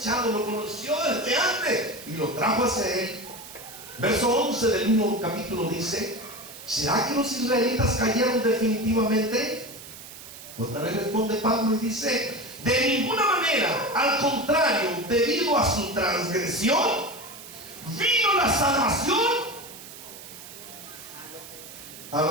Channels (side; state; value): right; noise; hiss, 15 dB below the sound